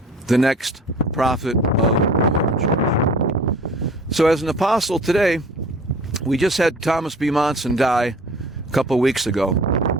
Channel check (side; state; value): both; normal; correlation 0.46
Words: the next prophet of the Mormon Church. So as an apostle today, we just had Thomas B. Monson die a couple weeks ago.